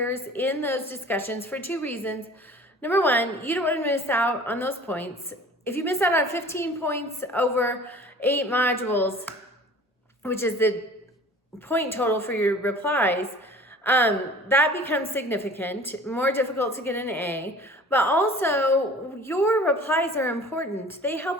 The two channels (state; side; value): normal; both; correlation 0.45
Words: in those discussions for 2 reasons. Number 1, you don't want to miss out on those points. If you miss out on 15 points over 8 modules, which is the point total for your replies, that becomes significant, more difficult to get an A. But also, your replies are important. They